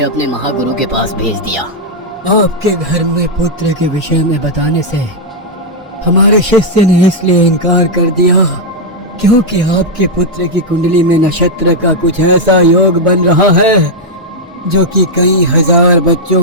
अपने महागुरु के पास भेज दिया। आपके घर में पुत्र के विषय में बताने से हमारे शिष्य ने इसलिए इनकार कर दिया क्योंकि आपके पुत्र की कुंडली में नक्षत्र का कुछ ऐसा योग बन रहा है जो कि कई हजार बच्चों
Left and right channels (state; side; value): normal; both; correlation -0.03